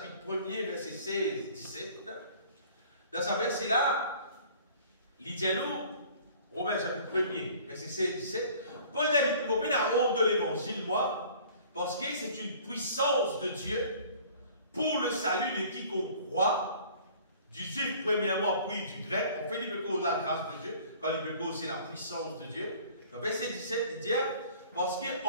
1er, verset 16, 17, dans ce verset-là, il dit nous, Romains, chapitre 1er, verset 16, 17, Paul dit la honte de l'évangile, moi, parce que c'est une puissance de Dieu pour le salut de quiconque croit, du juif premièrement, puis du grec. En fait, il peut causer la grâce de Dieu, quand il peut causer la puissance de Dieu. Dans verset 17, il dit, parce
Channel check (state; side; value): inverted; both; correlation -0.50